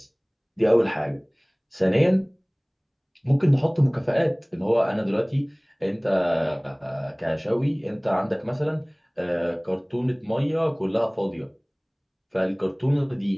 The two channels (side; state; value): both; identical; correlation 1.00